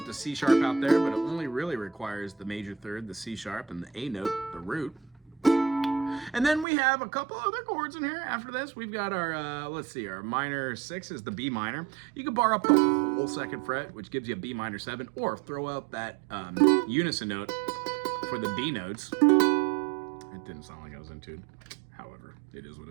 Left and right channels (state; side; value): drops out; left; at 6.7 s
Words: the C sharp out there, but it only really requires the major third, the C sharp, and the A note, the root. And then we have a couple other chords in here. After this, we've got our, let's see, our minor 6 is the B minor. You can bar up the whole second fret, which gives you a B minor 7, or throw out that unison note for the B notes. It didn't sound like I was in tune. However, it is what